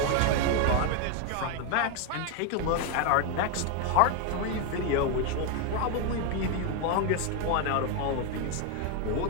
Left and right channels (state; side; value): different; both; correlation 0.01